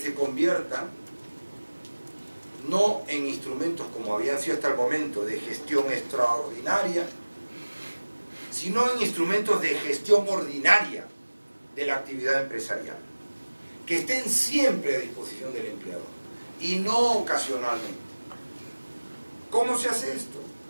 conviertan no en instrumentos como habían sido hasta el momento de gestión extraordinaria, sino en instrumentos de gestión ordinaria de la actividad empresarial, que estén siempre a disposición del empleador y no ocasionalmente. ¿Cómo se hace esto?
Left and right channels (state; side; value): inverted; both; correlation -1.00